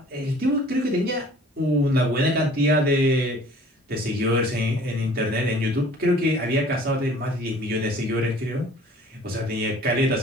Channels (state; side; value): normal; both; correlation 0.51